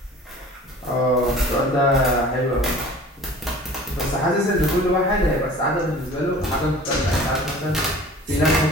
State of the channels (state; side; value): normal; both; correlation 0.44